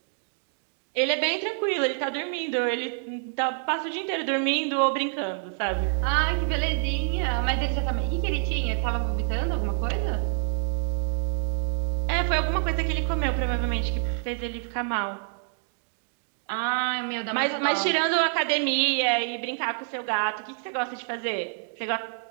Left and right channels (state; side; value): silent; left; digital silence